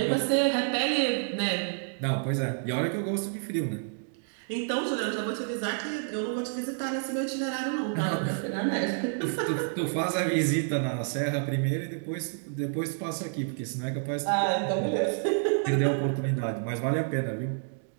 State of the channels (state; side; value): silent; left; digital silence